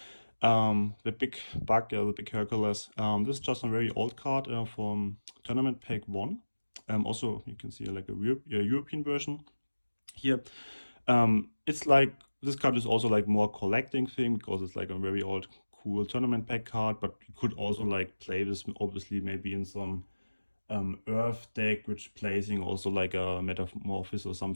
the big bug, the big Hercules. This is just a very old card from Tournament Pack 1. Also, you can see like a European version here. It's like this card is also like more collecting thing because it's like a very old cool tournament pack card, but you could also like play this obviously maybe in some Earth deck, which placing also like a Metamorphosis or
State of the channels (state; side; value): inverted; both; correlation -1.00